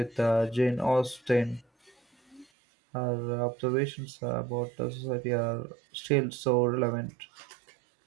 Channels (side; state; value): left; drops out; at 2.5 s